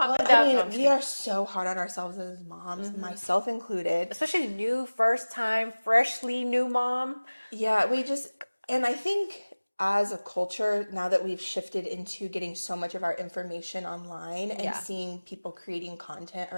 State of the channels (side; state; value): both; inverted; correlation -1.00